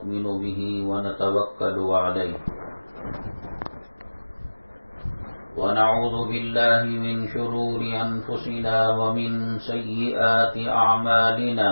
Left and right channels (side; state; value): both; inverted; correlation -1.00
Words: به ونتوکل علیہ ونعوذ باللہ من شرور انفسنا ومن سیئات اعمالنا